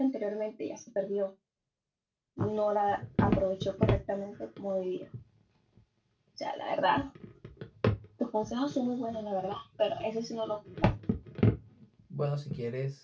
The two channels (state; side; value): identical; both; correlation 1.00